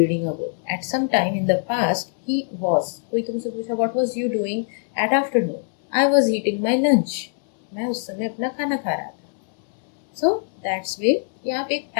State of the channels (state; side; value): silent; right; 64 dB below the other